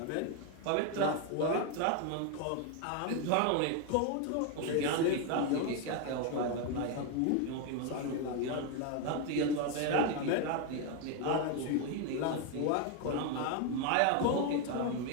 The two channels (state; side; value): different; both; correlation 0.01